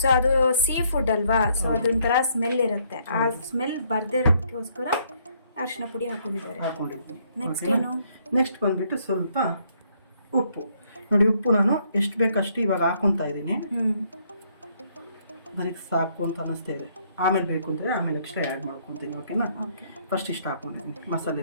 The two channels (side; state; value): both; inverted; correlation -0.68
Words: ಅದು ಸೀ ಫುಡ್ ಅಲ್ವಾ, ಸೊ ಅದೊಂಥರ ಸ್ಮೆಲ್ ಇರುತ್ತೆ. ಆ ಸ್ಮೆಲ್ ಬರ್ದೇ ಇರೋದಕ್ಕೋಸ್ಕರ ಅರಿಶಿನ ಪುಡಿ ಹಾಕೊಂಡಿದ್ದಾರೆ. ನೆಕ್ಸ್ಟ್ ಬಂದ್ಬಿಟ್ಟು ಸ್ವಲ್ಪ ಉಪ್ಪು. ನೋಡಿ, ಉಪ್ಪು ನಾನು ಎಷ್ಟು ಬೇಕಷ್ಟು ಇವಾಗ ಹಾಕೊಂತಾ ಇದ್ದೀನಿ. ನನಗೆ ಸಾಕು ಅಂತ ಅನ್ನಿಸ್ತಾ ಇದೆ. ಆಮೇಲೆ ಬೇಕು ಅಂದರೆ ಆಮೇಲೆ ಎಕ್ಸ್ಟ್ರಾ ಆ್ಯಡ್ ಮಾಡ್ಕೊತೀನಿ. ಓಕೆನಾ? ಫಸ್ಟ್ ಇಷ್ಟು ಹಾಕೊಂಡಿದ್ದೀನಿ